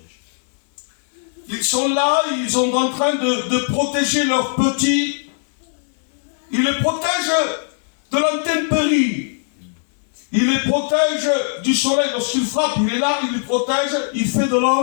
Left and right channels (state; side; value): silent; right; 66 dB below the other